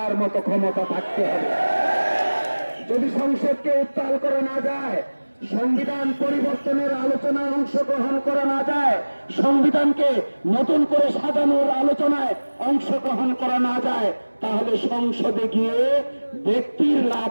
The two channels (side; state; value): both; inverted; correlation -1.00